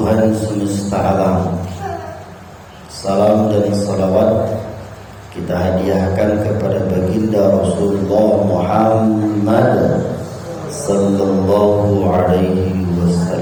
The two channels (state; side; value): identical; both; correlation 1.00